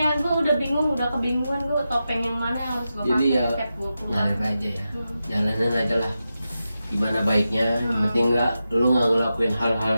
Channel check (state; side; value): inverted; both; correlation -0.91